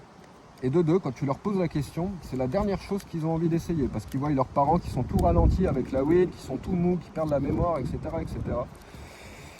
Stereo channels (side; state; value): both; identical; correlation 1.00